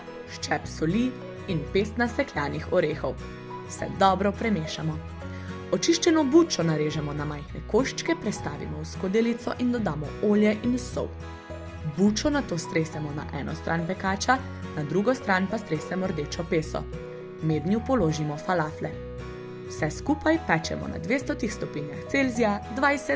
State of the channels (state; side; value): identical; both; correlation 1.00